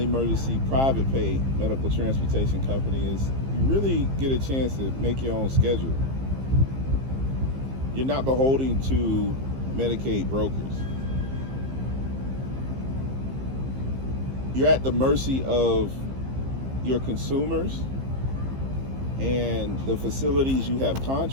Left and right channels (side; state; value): left; late; 15 ms